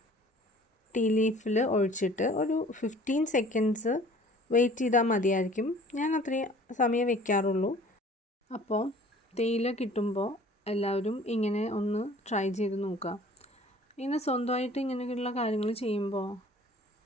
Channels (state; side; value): normal; both; correlation 0.50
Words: ടീ ലീഫിൽ ഒഴിച്ചിട്ട് ഒരു 15 സെക്കൻഡ്സ് വെയിറ്റ് ചെയ്താൽ മതിയായിരിക്കും. ഞാൻ അത്രയും സമയം വെക്കാറുള്ളൂ. അപ്പോൾ തേയില കിട്ടുമ്പോൾ എല്ലാവരും ഇങ്ങനെ ഒന്ന് ട്രൈ ചെയ്ത് നോക്കുക. ഇങ്ങനെ സ്വന്തമായിട്ട് ഇങ്ങനെയുള്ള കാര്യങ്ങൾ ചെയ്യുമ്പോൾ